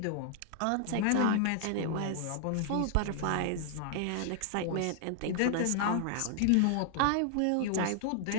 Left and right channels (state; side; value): different; both; correlation 0.00